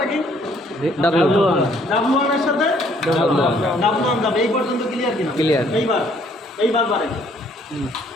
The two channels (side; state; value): both; normal; correlation 0.63